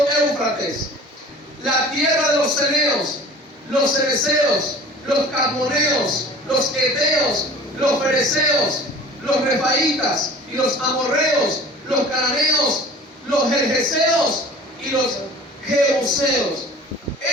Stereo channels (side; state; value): both; normal; correlation 0.43